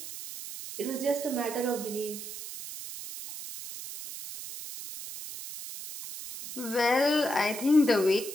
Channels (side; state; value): right; noise; hiss, 10 dB below the sound